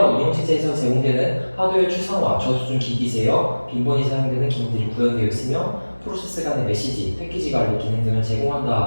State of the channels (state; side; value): inverted; both; correlation -1.00